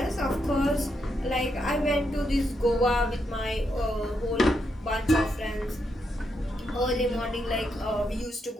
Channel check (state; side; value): normal; both; correlation 0.81